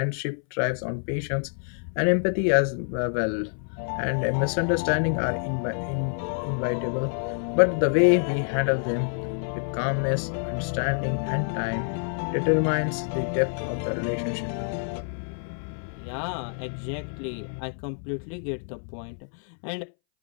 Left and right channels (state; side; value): silent; right; 60 dB below the other